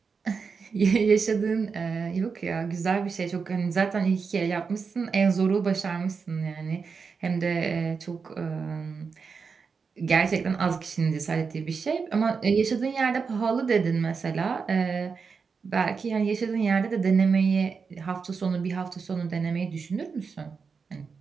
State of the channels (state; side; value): quieter; left; 5.4 dB